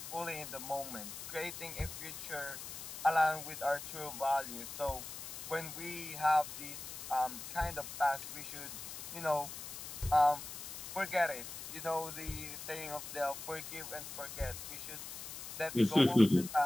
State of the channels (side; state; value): left; noise; hiss, 9 dB below the sound